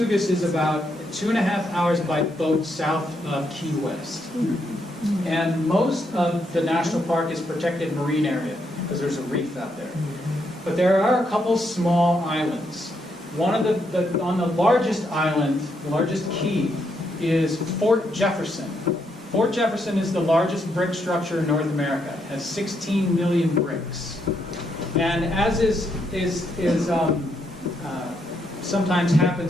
is about 2.5 hours by boat south of Key West. And most of the national park is protected marine area because there's a reef out there. But there are a couple small islands. One of on the largest island, the largest key, is Fort Jefferson. Fort Jefferson is the largest brick structure in North America. It has 16 million bricks. And as sometimes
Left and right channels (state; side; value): normal; both; correlation 0.77